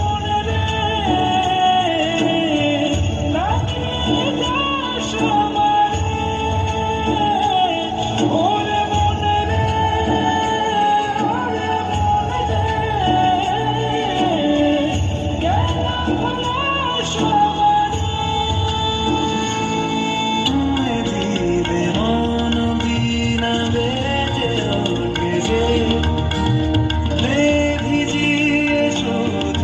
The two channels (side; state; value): both; identical; correlation 1.00